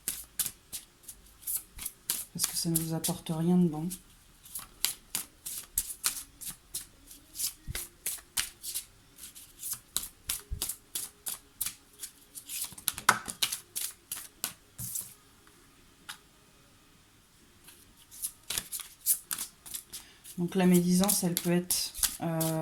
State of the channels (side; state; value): both; identical; correlation 1.00